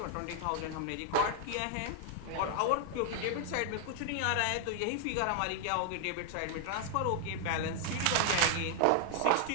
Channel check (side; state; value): both; different; correlation 0.00